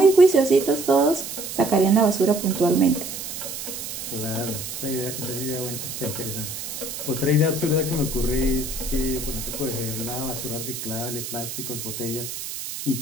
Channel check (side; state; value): right; noise; hiss, 7 dB below the sound